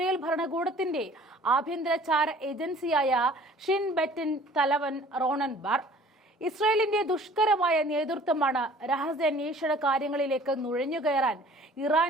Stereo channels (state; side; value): normal; both; correlation 0.50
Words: ഭരണകൂടത്തിന്റെ ആഭ്യന്തര ചാര ഏജൻസിയായ ഷിൻ ബെറ്റിൻ തലവൻ റോണൻ ബാർ. ഇസ്രായേലിന്റെ ദുഷ്കരമായ നേതൃത്വമാണ് രഹസ്യാന്വേഷണ കാര്യങ്ങളിലേക്ക് നുഴഞ്ഞുകയറാൻ